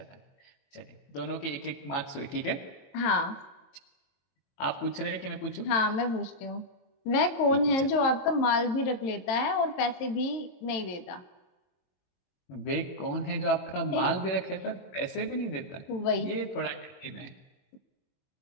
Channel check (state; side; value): late; right; 22 ms